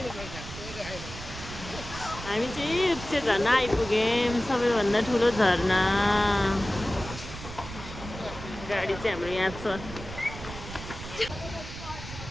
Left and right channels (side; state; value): right; noise; rumble, 11 dB below the sound